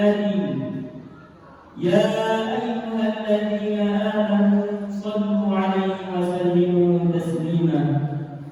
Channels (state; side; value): identical; both; correlation 1.00